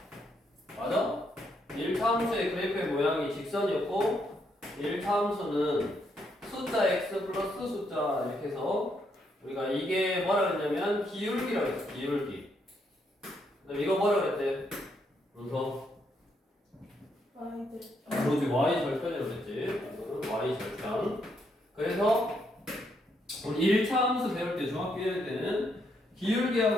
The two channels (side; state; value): both; normal; correlation 0.76